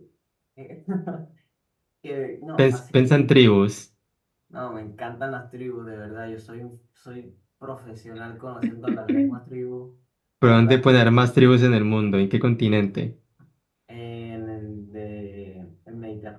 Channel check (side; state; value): both; identical; correlation 1.00